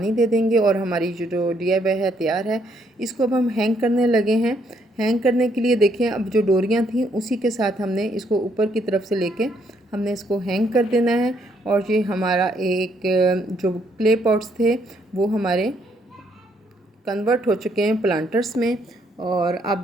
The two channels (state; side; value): normal; both; correlation 0.71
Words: दे देंगे और हमारी जो DIY है तैयार है। इसको अब हम हैंग करने लगे हैं। हैंग करने के लिए देखें, अब जो डोरियां थी उसी के साथ हमने इसको ऊपर की तरफ से लेके हमने इसको हैंग कर देना है और ये हमारा एक जो क्ले पॉट्स थे वो हमारे कन्वर्ट हो चुके हैं प्लांटर्स में और आप